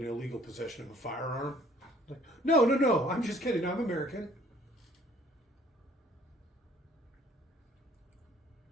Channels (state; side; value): normal; both; correlation 0.57